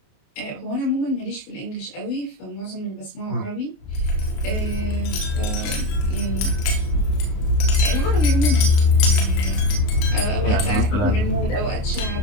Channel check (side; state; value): right; late; 30 ms